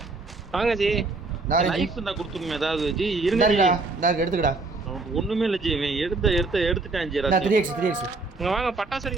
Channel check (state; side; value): quieter; left; 3.5 dB